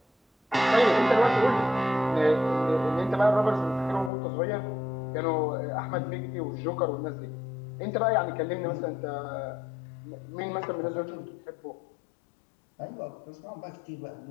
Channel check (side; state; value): right; drops out; at 4.1 s